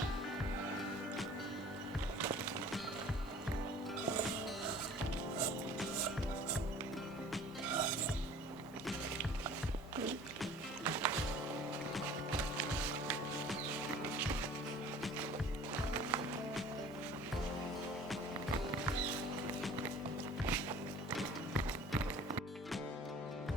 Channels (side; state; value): both; normal; correlation 0.47